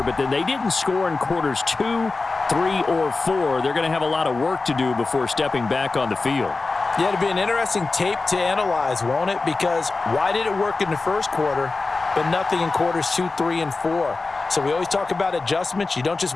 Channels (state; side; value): quieter; right; 3.7 dB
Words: but then they didn't score in quarters 2, 3, or 4. They're going to have a lot of work to do before stepping back on the field. Yeah, it'll be an interesting tape to analyze, won't it? Because why did it work in the first quarter, but nothing in quarters 2, 3, and 4? So we always talk about adjustments. You don't just